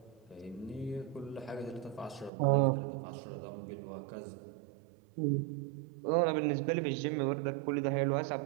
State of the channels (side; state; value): left; drops out; at 2.3 s